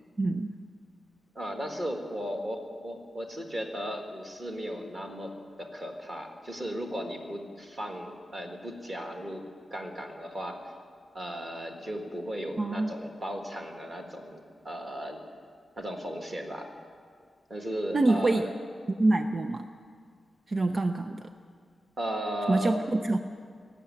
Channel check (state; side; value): normal; both; correlation 0.94